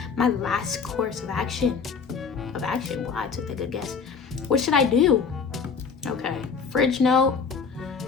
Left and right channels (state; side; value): quieter; right; 5.7 dB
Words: my last course of action. Well, I took a good guess. What should I do? Okay, fridge note.